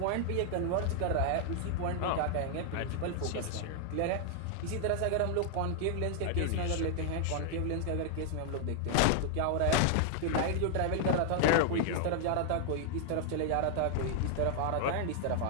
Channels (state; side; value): different; both; correlation 0.00